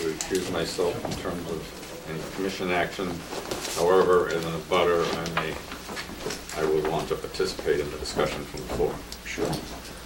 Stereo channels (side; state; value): both; identical; correlation 1.00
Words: recuse myself in terms of any commission action. However, as a butter, I would want to participate in the discussion from the floor. Sure.